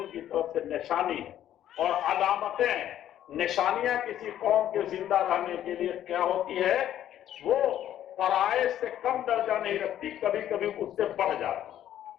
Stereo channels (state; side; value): quieter; right; 11.5 dB